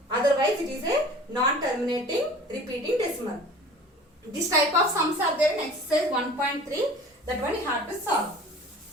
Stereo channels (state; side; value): normal; both; correlation 0.44